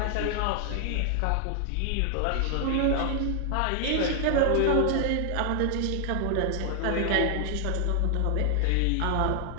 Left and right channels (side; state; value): both; different; correlation 0.00